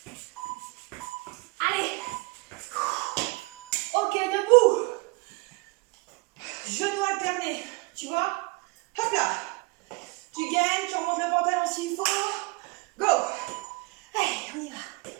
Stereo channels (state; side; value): quieter; left; 27.3 dB